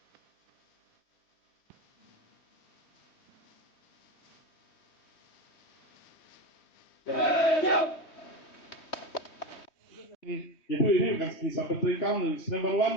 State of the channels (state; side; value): late; right; 3.2 ms